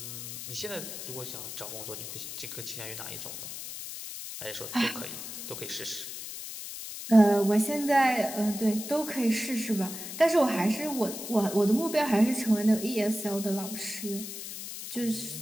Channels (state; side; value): noise; left; hiss, 9 dB below the sound